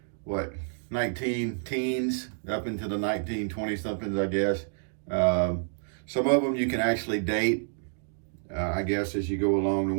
19 teens, up into the 1920-somethings, I guess. Some of them you can actually date, I guess, as you go along. The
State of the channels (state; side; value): silent; left; digital silence